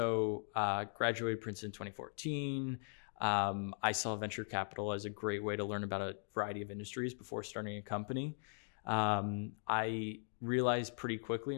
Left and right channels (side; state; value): right; silent; 51 dB below the other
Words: Princeton in 2014. I saw venture capital as a great way to learn about a variety of industries before starting a company. I realized pretty quickly